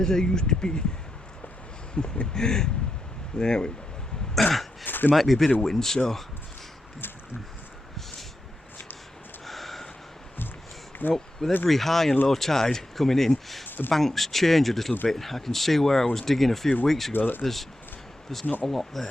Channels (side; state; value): both; normal; correlation 0.87